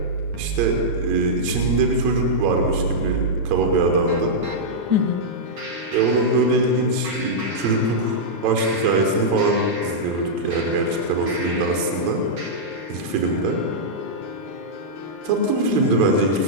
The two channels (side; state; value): left; late; 10 ms